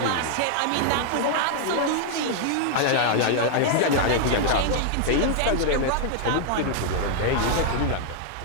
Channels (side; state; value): both; different; correlation -0.01